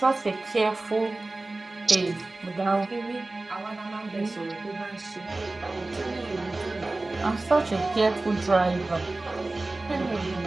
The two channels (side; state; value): left; quieter; 3.0 dB